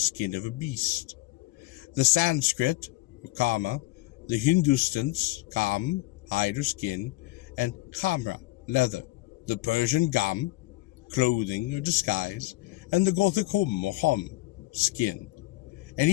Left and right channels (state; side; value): quieter; right; 19.4 dB